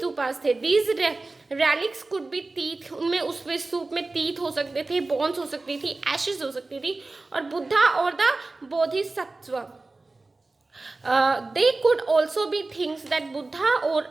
थे। These relics could be teeth, उनमें उसमें स्तूप में टीथ हो सकते थे, बोन्स हो सकती थी, एशेस हो सकती थी और बुद्धा और the Bodhisattva. They could also be things that Buddha or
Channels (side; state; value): left; quieter; 3.3 dB